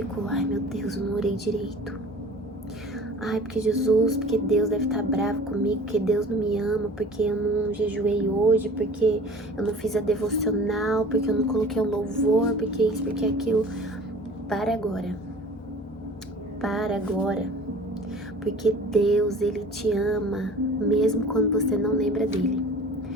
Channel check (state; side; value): normal; both; correlation 0.44